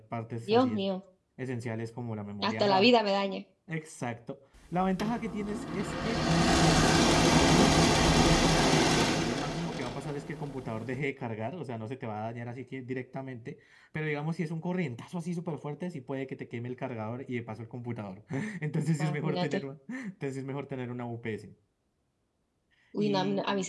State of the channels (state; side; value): identical; both; correlation 1.00